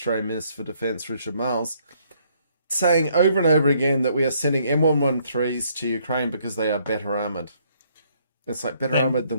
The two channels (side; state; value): both; inverted; correlation -0.67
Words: Minister for Defence, Richard Marles, saying over and over again that we are sending M113s to Ukraine because they are better armoured. It's like better armoured